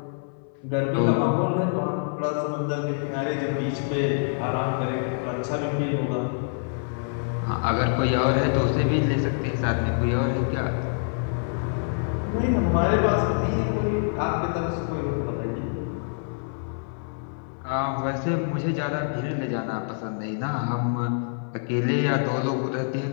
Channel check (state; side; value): silent; right; 58 dB below the other